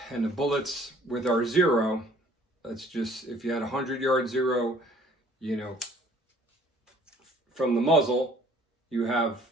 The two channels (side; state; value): both; normal; correlation 0.55